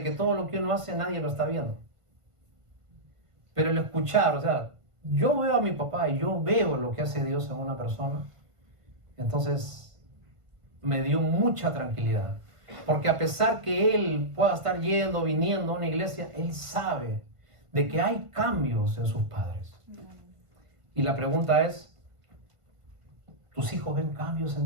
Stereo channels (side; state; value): left; late; 1.5 ms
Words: que todo lo que uno hace nadie lo está viendo. Pero el escuchar, o sea, yo veo a mi papá y yo veo lo que hace Dios en una persona, entonces me dio mucha tranquilidad. Porque a pesar que él pueda estar yendo, viniendo a una iglesia, él sabe de que hay cambios en sus padres. Y la pregunta es, ¿tus hijos ven cambios